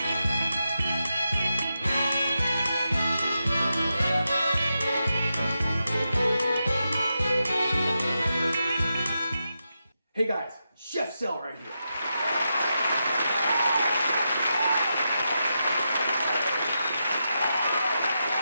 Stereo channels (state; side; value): inverted; both; correlation -0.87